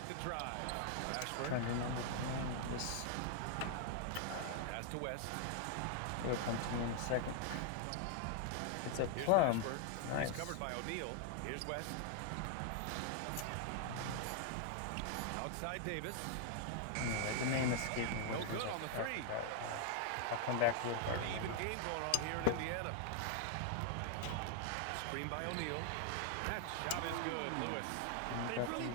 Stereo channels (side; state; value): both; different; correlation 0.00